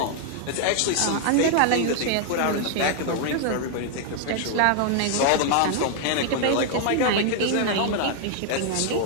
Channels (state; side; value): different; both; correlation 0.00